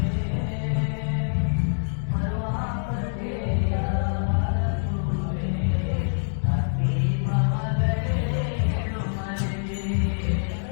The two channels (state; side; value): silent; right; digital silence